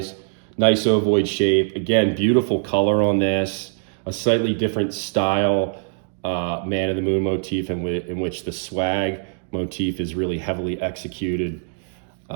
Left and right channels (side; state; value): left; silent; digital silence